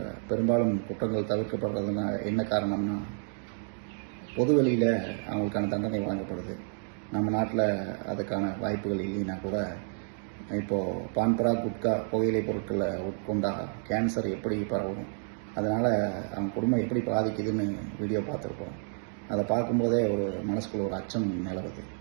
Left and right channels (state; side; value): silent; left; 58 dB below the other